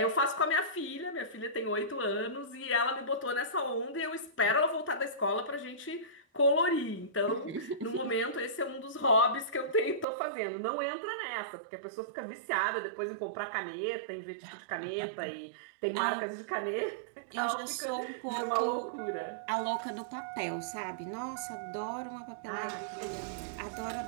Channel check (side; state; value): left; drops out; at 10.1 s